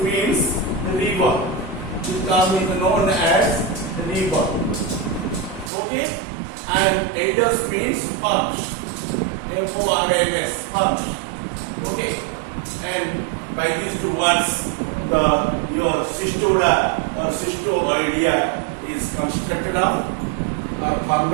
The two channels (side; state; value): left; drops out; at 5.7 s